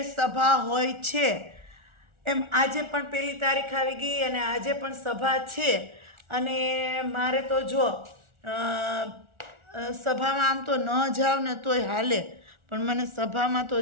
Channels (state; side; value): late; left; 1.4 ms